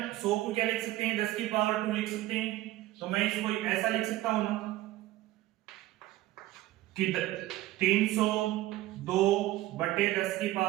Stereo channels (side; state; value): left; quieter; 16.1 dB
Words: 100 को क्या लिख सकते हैं? 10 की पावर 2 लिख सकते हैं। तो मैं इसको ऐसा लिख सकता हूं ना कि 302 बटे 10 की